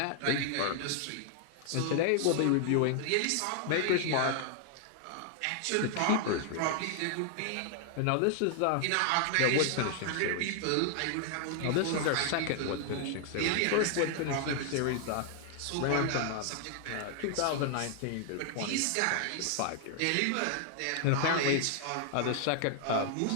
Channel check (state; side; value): different; both; correlation 0.00